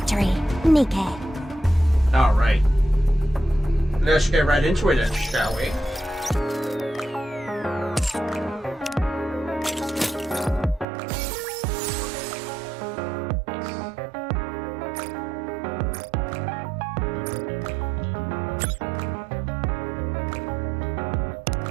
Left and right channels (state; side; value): drops out; left; at 10.9 s